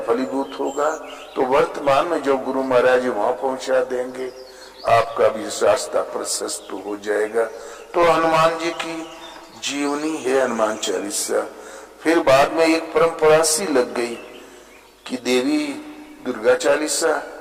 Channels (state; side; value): identical; both; correlation 1.00